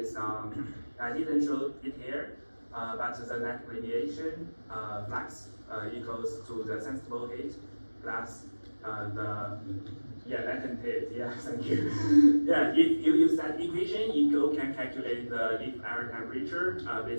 on I didn't show it here, but the net radiation flux equals to the sensible heat plus the latent heat. Thank you. If you use that equation, you can calculate the leaf air temperature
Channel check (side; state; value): both; inverted; correlation -1.00